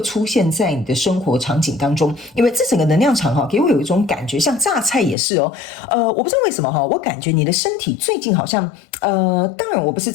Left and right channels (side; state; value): right; drops out; at 5.2 s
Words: 出现在你的生活场景当中，因为这整个能量场哈，给我有一种感觉，像榨菜也是哦。我不知道为什么哈，我感觉你的身体最近好像当然我不是